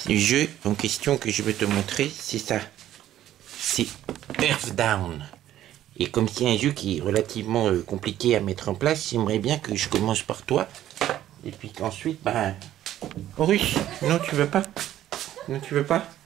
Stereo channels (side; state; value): left; quieter; 12.6 dB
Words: Le jeu en question que je veux te montrer, c'est ça. C'est Earthbound. Et comme c'est un jeu qui est relativement compliqué à mettre en place, j'aimerais bien que je commence par toi. Et puis qu'ensuite, ben... Russe, non, tu veux pas? Non, tu veux pas?